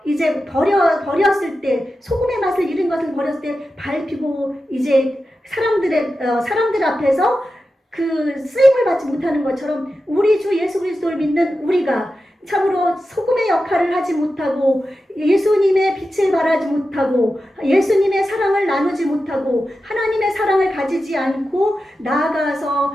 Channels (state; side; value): normal; both; correlation 0.91